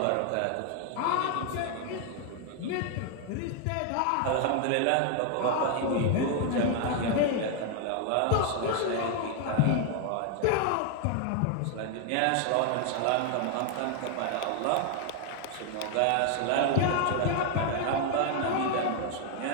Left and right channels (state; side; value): different; both; correlation 0.00